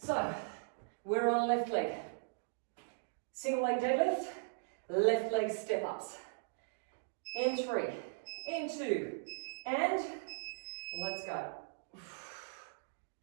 we're on left leg. Single leg deadlift, left leg step ups. In 3, in 2, and let's go.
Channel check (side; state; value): left; silent; digital silence